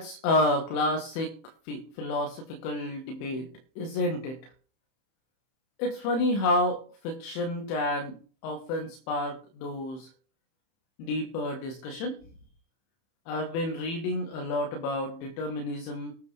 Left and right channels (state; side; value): late; right; 31 ms